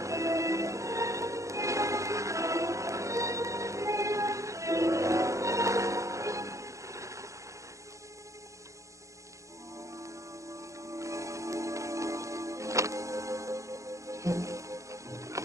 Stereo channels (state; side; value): late; left; 0.15 ms